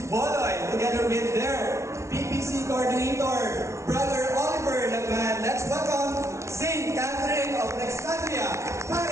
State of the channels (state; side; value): late; left; 0.13 ms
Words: together with their PPC coordinator, Brother Oliver Lagman. Let's welcome Saint Catherine of Alexandria,